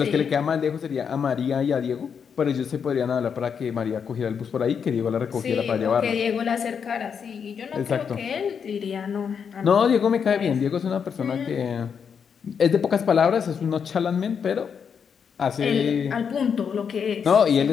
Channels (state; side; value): quieter; right; 6.9 dB